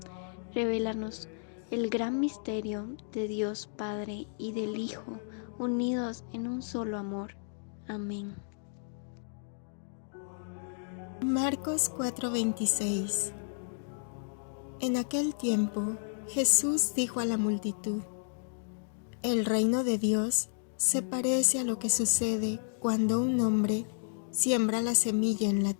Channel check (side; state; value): right; silent; digital silence